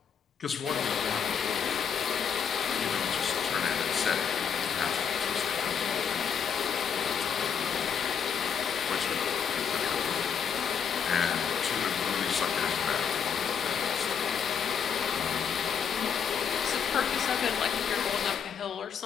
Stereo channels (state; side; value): quieter; right; 7.3 dB